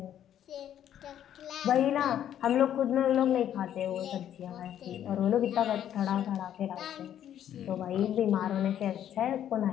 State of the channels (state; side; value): quieter; right; 10.5 dB